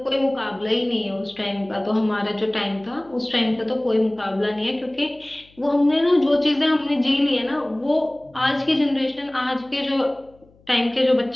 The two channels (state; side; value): noise; left; hum, 30 dB below the sound